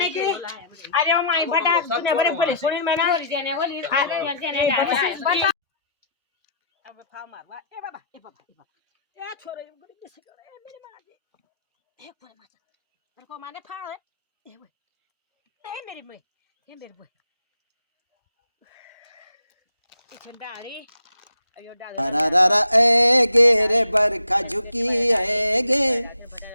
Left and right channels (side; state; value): both; inverted; correlation -0.63